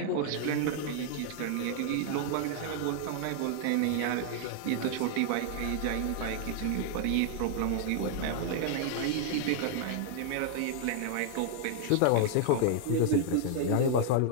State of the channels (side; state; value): both; different; correlation 0.00